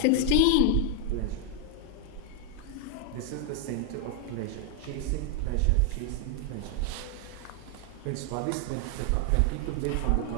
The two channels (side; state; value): both; different; correlation 0.00